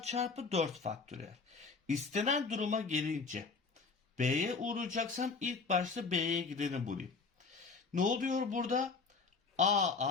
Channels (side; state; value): right; quieter; 4.6 dB